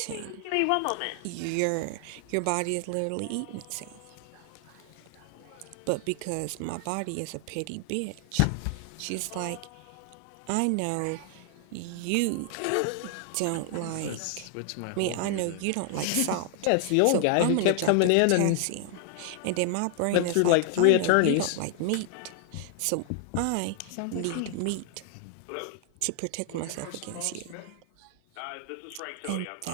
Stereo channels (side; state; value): both; different; correlation 0.00